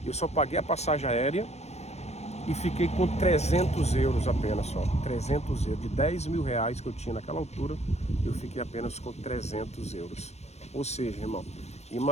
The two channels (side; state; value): right; late; 0.31 ms